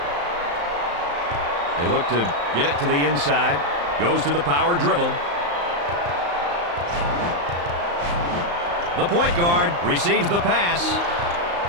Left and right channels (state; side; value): late; left; 35 ms